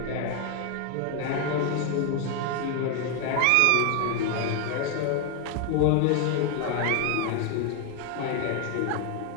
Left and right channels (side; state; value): both; different; correlation 0.01